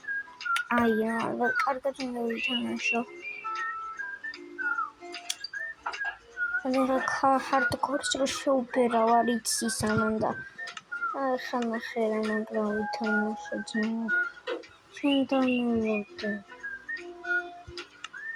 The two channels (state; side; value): identical; both; correlation 1.00